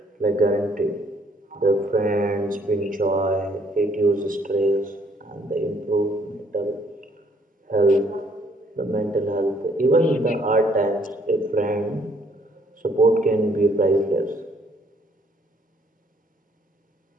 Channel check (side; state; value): both; normal; correlation 0.65